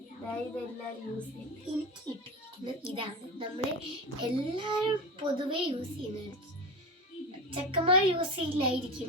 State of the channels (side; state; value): both; normal; correlation 0.25